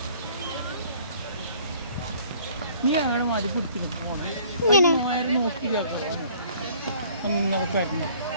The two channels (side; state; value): both; inverted; correlation -0.55